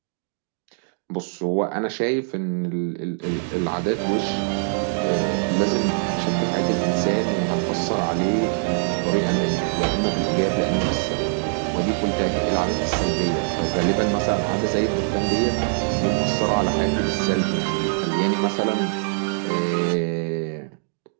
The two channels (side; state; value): left; silent; digital silence